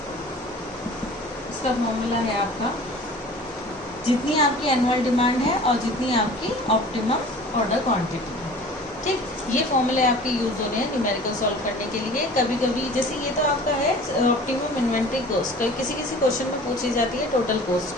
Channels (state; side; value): normal; both; correlation 0.44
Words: इसका फॉर्मूला है आपका जितनी आपकी एनुअल डिमांड है और जितनी आपकी ऑप्टिमम ऑर्डर क्वांटिटी है। ठीक, ये फॉर्मूले आपके यूज होने हैं न्यूमेरिकल सॉल्व करने के लिए। कभी कभी जैसे ये तो आपका है ऑप्टिमम इन्वेंट्री कॉस्ट, किसी क्वेश्चन में पूछी जाती है टोटल कॉस्ट,